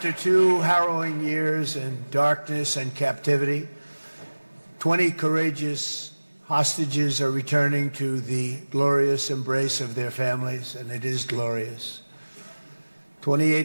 2 harrowing years in darkness and captivity, 20 courageous hostages are returning to the glorious embrace of their families, and it is glorious.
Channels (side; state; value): both; inverted; correlation -1.00